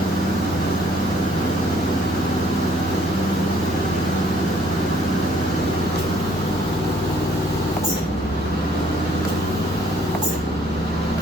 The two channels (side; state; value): both; normal; correlation 0.62